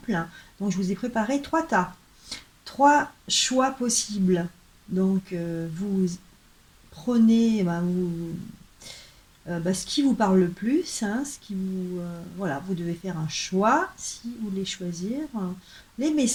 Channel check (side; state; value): both; identical; correlation 1.00